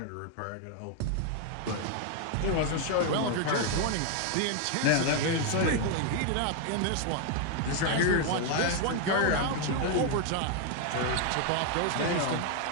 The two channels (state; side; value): different; both; correlation 0.01